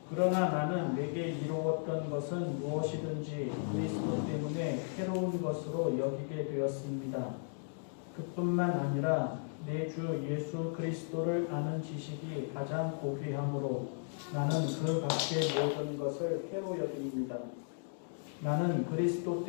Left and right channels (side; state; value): right; silent; digital silence